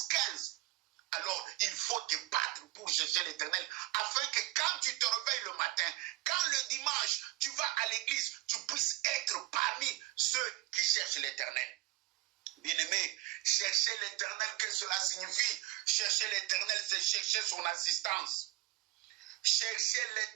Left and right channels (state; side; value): quieter; left; 18.2 dB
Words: 15. Alors, il faut te battre pour chercher l'Éternel, afin que quand tu te réveilles le matin, quand le dimanche, tu vas à l'église, tu puisses être parmi ceux qui cherchent l'Éternel. Bien-aimé, chercher l'Éternel, qu'est-ce que cela signifie? Chercher l'Éternel, c'est chercher son assistance. Chercher